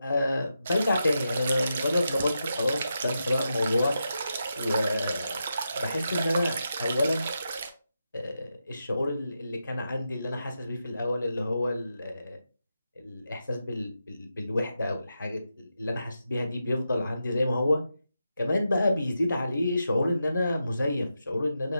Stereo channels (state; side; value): inverted; both; correlation -0.87